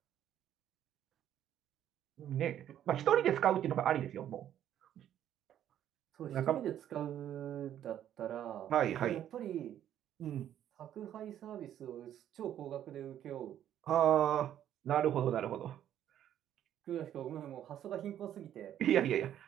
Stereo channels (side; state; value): left; quieter; 10.9 dB